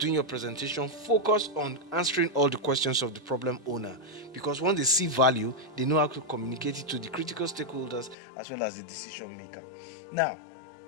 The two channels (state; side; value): drops out; right; at 8.2 s